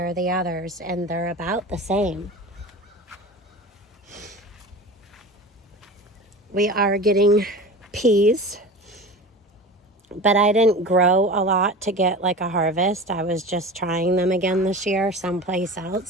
the others, and they're about the same. We are getting peas, but I didn't grow a lot to get like a harvest. I was just trying them again this year someplace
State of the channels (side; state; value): both; normal; correlation 0.33